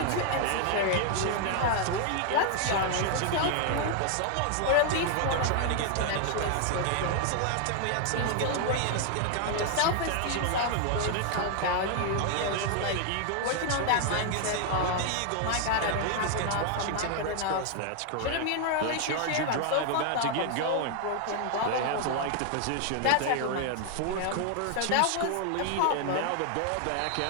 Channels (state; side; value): different; both; correlation 0.00